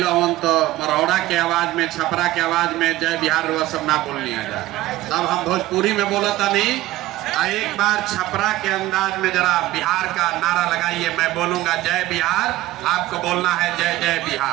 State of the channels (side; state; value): left; quieter; 16.5 dB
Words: हमन तो मरौड़ा के आवाज में, छपरा के आवाज में जय बिहार वो सब ना बोलनी आ जाए। तब हम भोजपुरी में बोलता नहीं। एक बार छपरा के अंदाज में जरा बिहार का नारा लगाइए। मैं बोलूंगा जय बिहार, आपको बोलना है जय जय